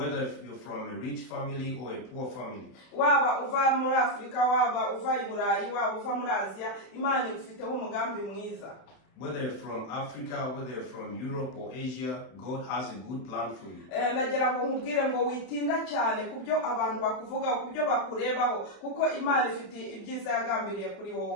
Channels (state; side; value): late; right; 31 ms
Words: you're from a rich family or a poor family. waba uva muri Afurika, waba uva i Burayi, waba uva muri Aziya, Imana igufiteho umugambi mwiza. Whether you're from Africa, whether you're from Europe or Asia, God has a good plan for you. Ndagira ngo nkubwire ngo witinda cyane kubyo abantu bakuvuga, kubyo bakurebaho, kuko Imana ifite ibyiza yagambiriye kuri